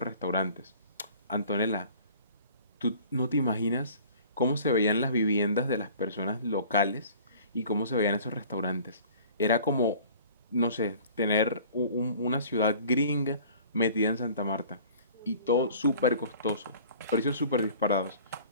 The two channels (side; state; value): both; inverted; correlation -0.48